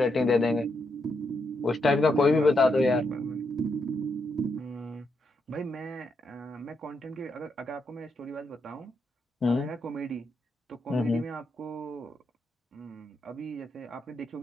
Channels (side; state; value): both; normal; correlation 0.81